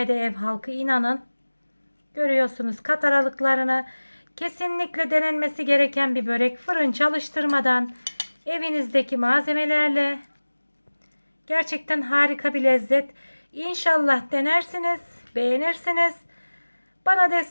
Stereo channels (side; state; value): both; inverted; correlation -1.00